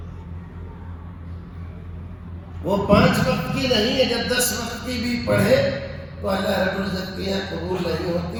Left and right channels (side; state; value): both; identical; correlation 1.00